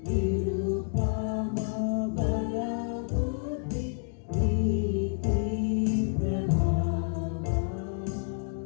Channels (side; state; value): right; silent; digital silence